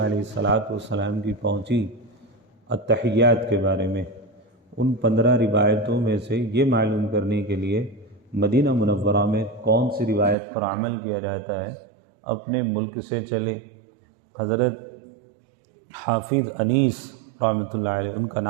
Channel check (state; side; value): drops out; left; at 10.4 s